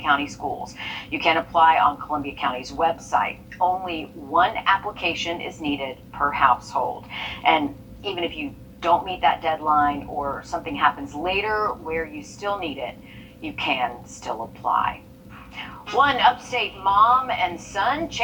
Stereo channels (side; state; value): both; identical; correlation 1.00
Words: County Schools. You can apply on Columbia County's website. Only one application is needed per household. And even if you don't meet that deadline or something happens later where you still need it, you can still apply. One upstate mom and son